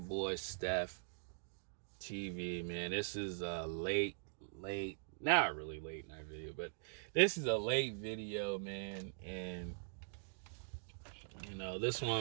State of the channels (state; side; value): silent; left; digital silence